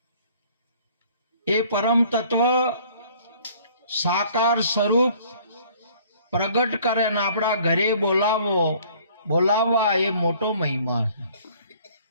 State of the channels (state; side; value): inverted; both; correlation -0.55